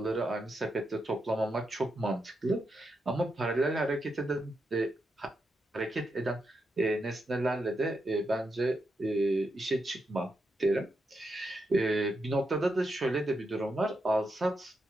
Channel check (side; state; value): both; normal; correlation 0.84